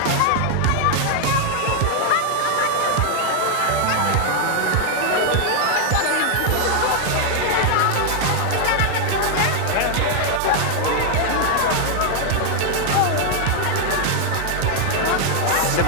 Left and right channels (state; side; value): different; both; correlation 0.00